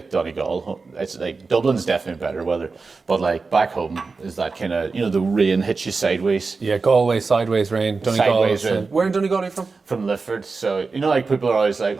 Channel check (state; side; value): quieter; left; 4.3 dB